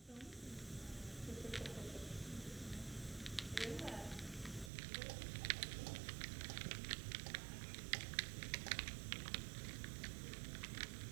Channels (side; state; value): left; drops out; at 4.7 s